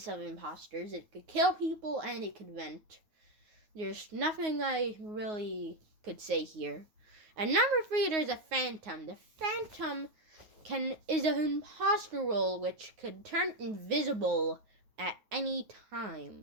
of imposters. It could kill people and it could vent. There's nothing I really could say here. And number 3, there's a Phantom. The Phantom is an imposter role which could turn invisible at any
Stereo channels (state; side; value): late; left; 9.5 ms